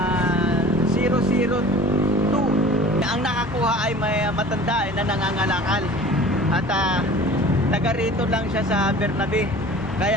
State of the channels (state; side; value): normal; both; correlation 0.43